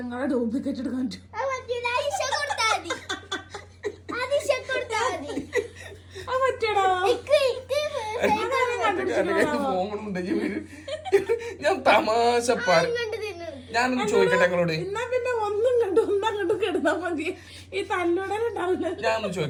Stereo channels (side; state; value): both; identical; correlation 1.00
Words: ഡ്യൂപ്ലിക്കേറ്റ് എടുക്കാൻ ഞാൻ തമാശ ഞാനൊന്ന് ചോദിക്കട്ടെ നിങ്ങളോട് എന്നാ പിന്നെ ഒന്നും കണ്ടു കിടന്നാ മതി ഈ തല്ലുടലുണ്ടാവില്ല. ഞാനൊന്ന്